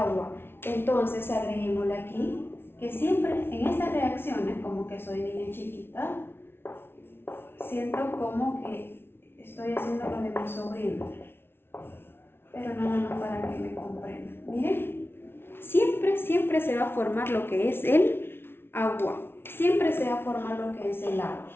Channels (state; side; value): late; right; 0.11 ms